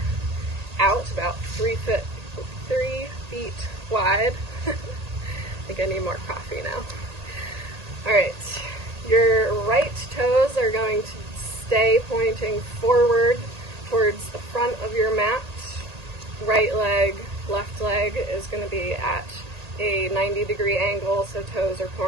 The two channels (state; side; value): late; left; 1.8 ms